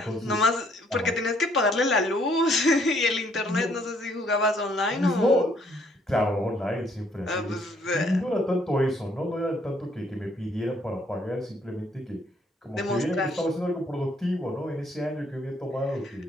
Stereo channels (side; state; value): both; normal; correlation 0.66